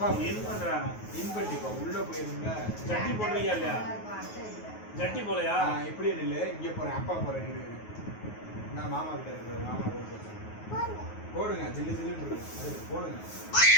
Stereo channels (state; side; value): late; right; 9.4 ms